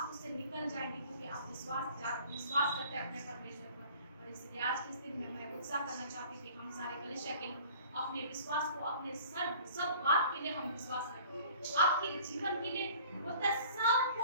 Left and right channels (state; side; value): inverted; both; correlation -0.50